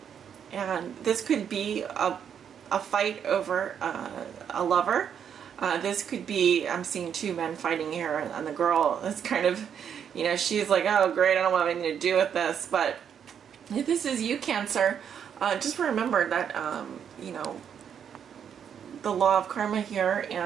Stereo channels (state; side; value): quieter; left; 8.2 dB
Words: this could be a fight over a lover. This could be, I'm seeing two men fighting here, and the girl is kind of, you know, she's like, oh great, I don't want anything to do with this. But if this is you, Cancer, just remember that, you know, the law of karma here,